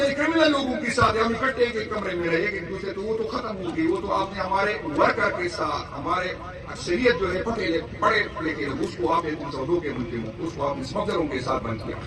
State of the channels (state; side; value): identical; both; correlation 1.00